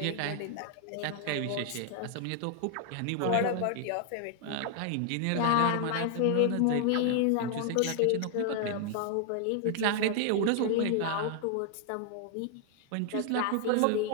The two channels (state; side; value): different; both; correlation 0.00